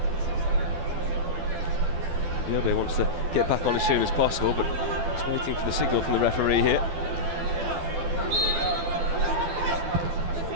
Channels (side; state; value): left; late; 12 ms